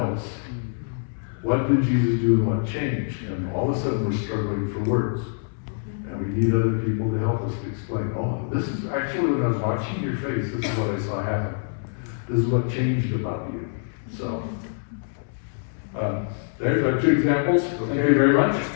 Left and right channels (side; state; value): right; silent; 61 dB below the other